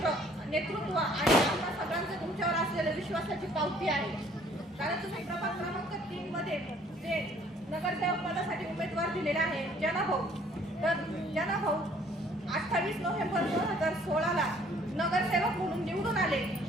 आणि आम्हा सगळ्यांचं तुमच्यावर असलेल्या विश्वासाची पावती आहे. कारण तुम्ही प्रभाग क्रमांक 3 मध्ये जे नगरसेवक पदासाठी उमेदवार दिलेला आहे जनाभाऊ, तर जनाभाऊ 28 नोव्हेंबर 2016ला नगरसेवक म्हणून निवडून आले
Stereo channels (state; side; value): normal; both; correlation 0.59